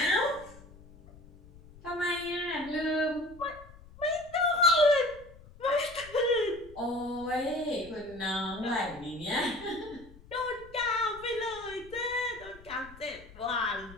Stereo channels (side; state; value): left; noise; rumble, 21 dB below the sound